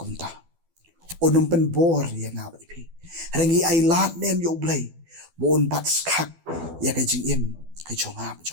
Unum pen bor yang nga wa depi. Rangi ay lat nem yo Blei. Wa un bat skak ya ka jing im ka jong nga ba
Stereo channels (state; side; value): late; left; 12 ms